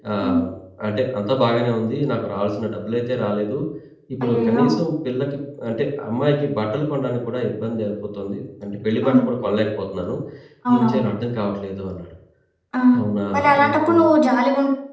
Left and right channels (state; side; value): identical; both; correlation 1.00